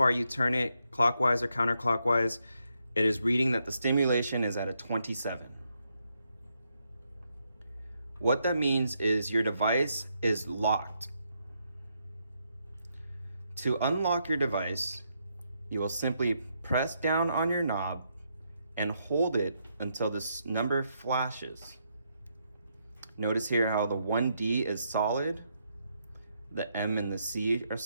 you turn it, clockwise or counterclockwise, it is reading that the stimulation is at a 27. What that means is your device is locked. To unlock your device, you will simply press down on your knob and hold it until this number flashes. Notice here how the 1D is solid, the M and the C are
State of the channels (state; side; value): inverted; both; correlation -0.79